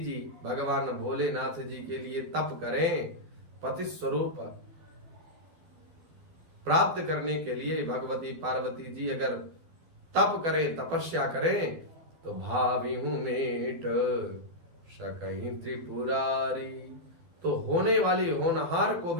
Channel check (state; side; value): late; left; 12 ms